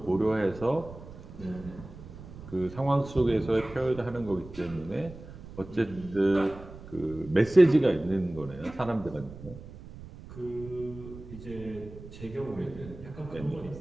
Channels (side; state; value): right; noise; rumble, 15 dB below the sound